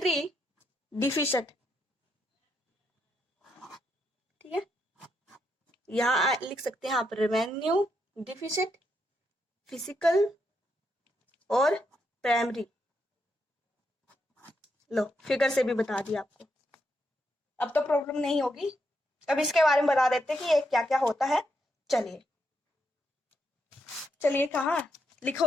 डिफिसिट, ठीक है। यहाँ लिख सकते हैं आप रेवेन्यू डिफिसिट, फिजिकल और प्राइमरी। लो, फिगर से भी बता दिया आपको, अब तो प्रॉब्लम नहीं होगी। अब इसके बारे में बता देते हैं कि ये क्या क्या होता है। चलिए चलिए, कहाँ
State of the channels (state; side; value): normal; both; correlation 0.80